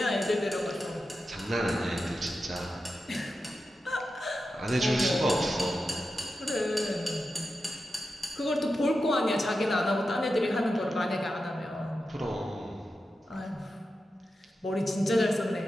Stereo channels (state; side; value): normal; both; correlation 0.90